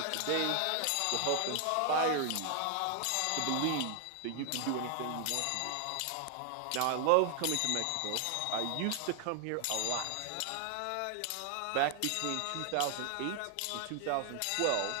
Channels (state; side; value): different; both; correlation 0.00